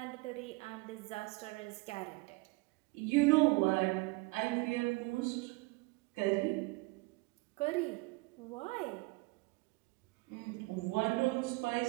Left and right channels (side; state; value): left; quieter; 24.5 dB